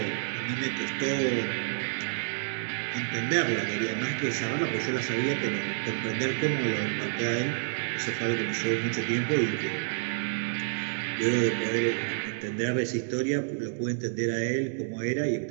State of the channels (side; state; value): left; silent; digital silence